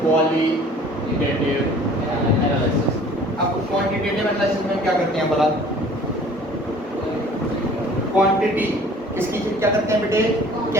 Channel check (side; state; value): both; normal; correlation 0.50